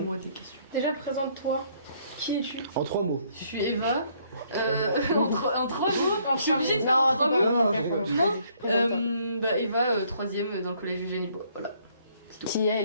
des questions. Déjà, présente-toi. Qui es-tu? En 3 mots. Je suis Eva. En trois mots. Je suis obligée de faire Non, en trois c'est mots. pas- Non. Eva, troisième dans le collège Eugénie Bois. Voilà. Qui est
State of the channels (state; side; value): inverted; both; correlation -0.65